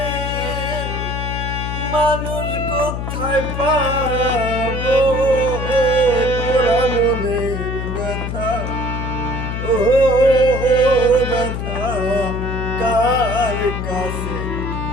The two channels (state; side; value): noise; left; hum, 4 dB below the sound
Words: মানুষ কোথায় পাবো, ওরা মনের ব্যথা, ও ব্যথা কার কাছে